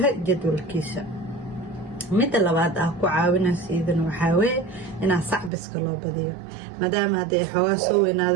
jadwalkiisa midda labaad ah ku caawinaysa idan waxaa weeye inaa sacbiska loo badiyo maadaama hadday xoogaa soo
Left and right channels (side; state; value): left; drops out; at 5.5 s